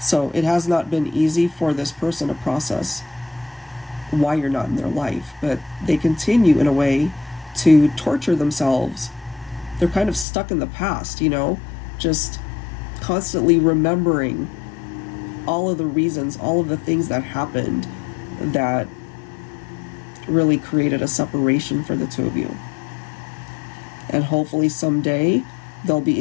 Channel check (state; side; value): drops out; right; at 10.2 s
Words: it has not been easy for this person to process why you're not in their life, but they continue in a way to torture themselves. They're kind of stuck in the past, just constantly remembering all of the reasons, all of the things that happened that really created a separation for the two of you. And hopefully someday they'll be